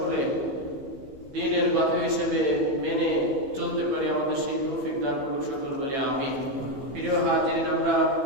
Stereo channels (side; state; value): left; late; 15 ms